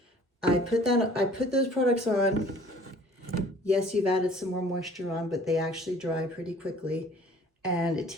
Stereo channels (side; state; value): both; normal; correlation 0.51